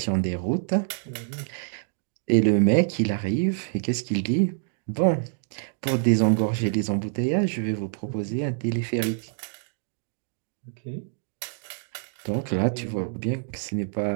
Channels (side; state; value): left; silent; digital silence